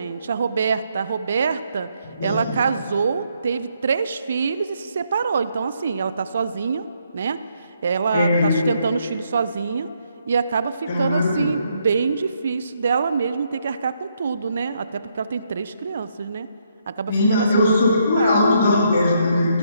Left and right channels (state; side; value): inverted; both; correlation -0.75